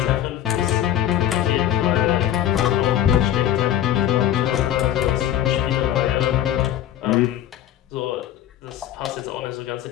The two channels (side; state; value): right; quieter; 11.5 dB